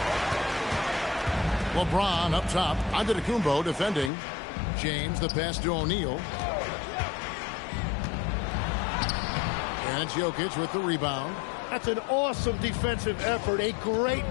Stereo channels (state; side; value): drops out; right; at 4.1 s